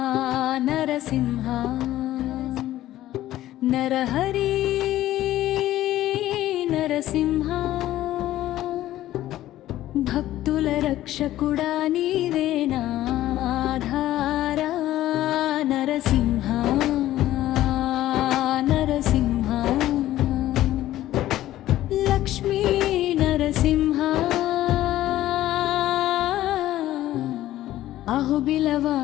నరసింహ నరహరి నరసింహ భక్తుల రక్షకుడా నీవేనా ఆధారా నరసింహ నరసింహ లక్ష్మీ నరసింహ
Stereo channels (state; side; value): quieter; right; 14.2 dB